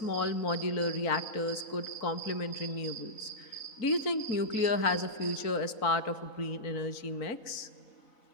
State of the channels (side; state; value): right; late; 3.9 ms